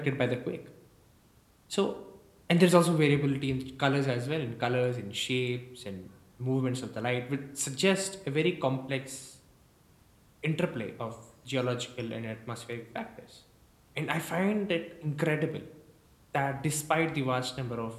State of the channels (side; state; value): both; identical; correlation 1.00